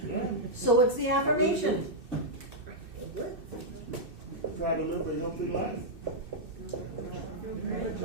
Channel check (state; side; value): late; left; 2.6 ms